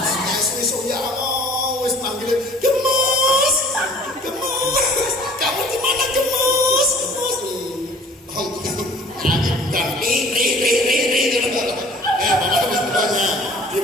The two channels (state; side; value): normal; both; correlation 0.49